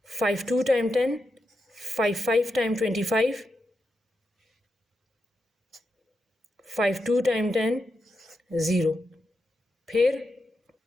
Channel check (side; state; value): both; normal; correlation 0.86